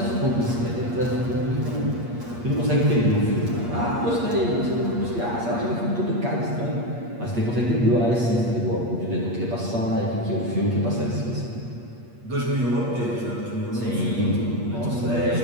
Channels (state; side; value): late; left; 8.5 ms